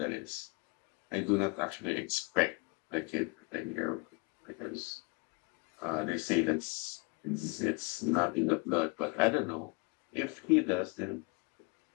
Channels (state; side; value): quieter; right; 31.1 dB